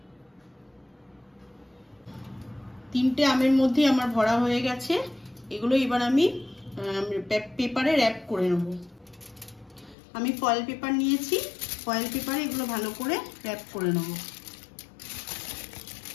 তিনটে আমের মধ্যে আমার ভরা হয়ে গেছে। এগুলো এবার আমি পেপারে র্যাপ করে নেব। আমি ফয়েল পেপার নিয়েছি, ফয়েল পেপারে এগুলো ভালো করে র‍্যাপ করে নেব।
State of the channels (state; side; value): drops out; right; at 10.0 s